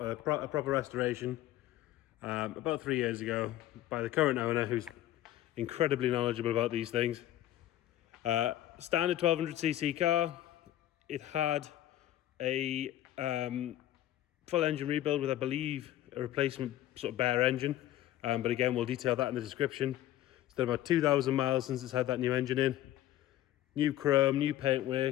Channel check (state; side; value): quieter; right; 13.6 dB